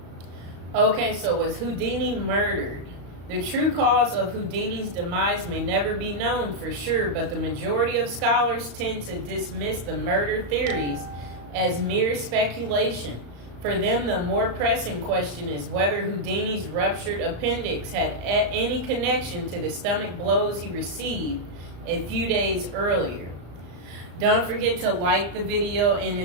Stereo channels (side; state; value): left; late; 35 ms